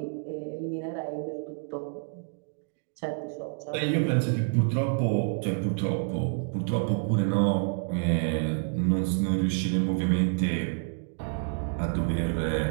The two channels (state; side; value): silent; left; 58 dB below the other